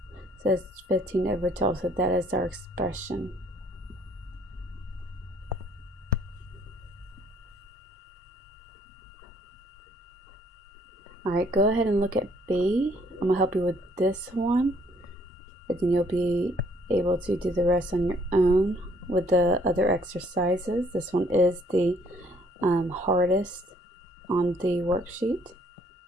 So it's 15 over 12, so that is our expression. Alright, go ahead and look at B. I'm going to help you with this one, but then you'll be able to do the rest on your own with the other exercises. This one is the hardest on the worksheet.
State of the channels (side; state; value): both; normal; correlation 0.63